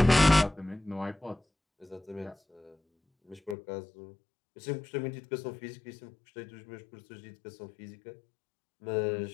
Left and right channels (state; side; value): drops out; right; at 3.6 s